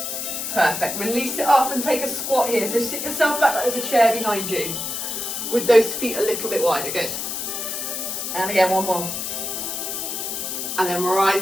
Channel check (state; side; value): noise; left; hiss, 4 dB below the sound